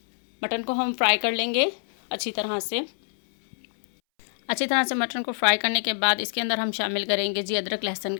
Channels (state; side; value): silent; right; 62 dB below the other